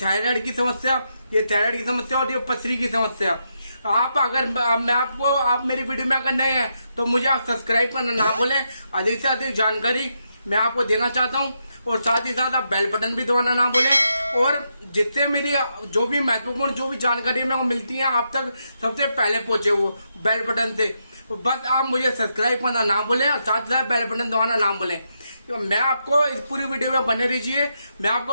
की समस्या, ये थायराइड की समस्या और ये पथरी की समस्या, आप अगर मैं आपको आप मेरी वीडियो में अगर नए हैं तो मुझे आप सब्सक्राइब करना ना भूलें। अधिक से अधिक जानकारी मैं आपको देना चाहता हूँ और साथ ही साथ आप बेल बटन भी दबाना ना भूलें। और जिससे मेरी जो भी महत्वपूर्ण जो भी जानकारी मेरे को मिलती है आप तक सबसे पहले पहुंचे वो बेल बटन से, बस आप मुझे सब्सक्राइब करना ना भूलें और साथ ही साथ बेल बटन दबाना ना भूलें। तो मैं आपको इस पूरी वीडियो में बने रहिए। मैं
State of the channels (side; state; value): both; inverted; correlation -0.82